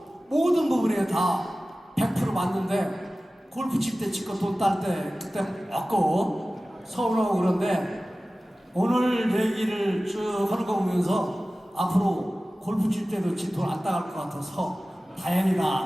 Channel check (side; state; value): both; normal; correlation 0.96